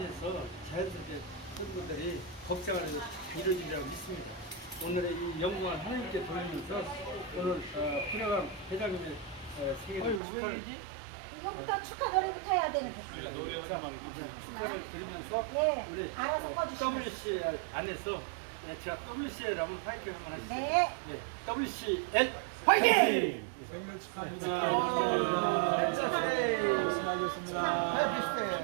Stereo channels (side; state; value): left; drops out; at 10.2 s